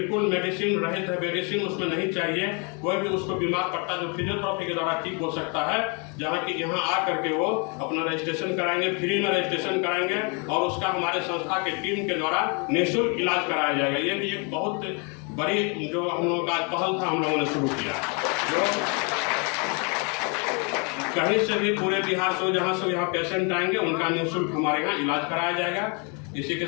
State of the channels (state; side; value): quieter; right; 34.5 dB